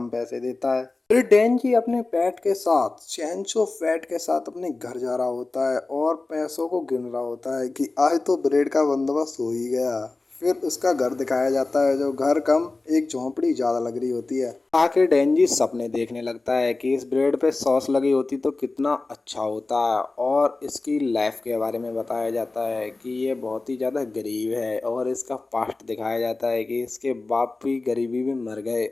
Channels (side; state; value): right; quieter; 3.4 dB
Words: पैसे देता है। फिर डेंजी अपने पेट के साथ, चेंचो फैट के साथ, अपने घर जा रहा होता है और पैसों को गिन रहा होता है कि आज तो ब्रेड का बंदोबस्त हो ही गया। फिर उसका घर दिखाया जाता है, जो घर कम एक झोंपड़ी ज्यादा लग रही होती है। आखिर डेंजी सपने देखने लगता है कि इस ब्रेड पे सॉस लगी होती तो कितना अच्छा होता। और इसकी लाइफ के बारे में बताया जाता है कि ये बहुत ही ज़्यादा गरीब है और इसका पास्ट दिखाया जाता है कि इसके बाप भी गरीबी में मर गए